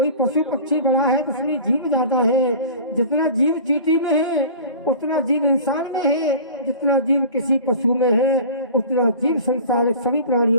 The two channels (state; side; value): inverted; both; correlation -0.40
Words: पशु पक्षी बड़ा है तो उसमें जीव ज्यादा है। जितना जीव चींटी में है उतना जीव इंसान में है, जितना जीव किसी पशु में है उतना जीव संसार सभी